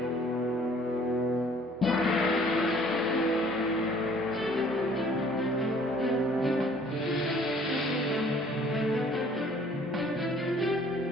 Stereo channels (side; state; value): both; normal; correlation 0.56